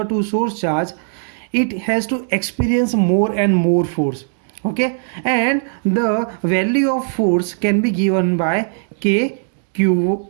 it has to experience more and more force. Okay, and the value of force can be given by Q,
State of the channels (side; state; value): left; silent; digital silence